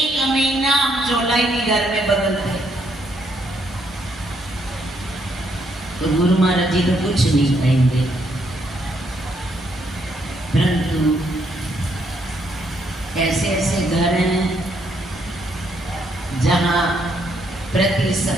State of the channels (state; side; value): normal; both; correlation 0.73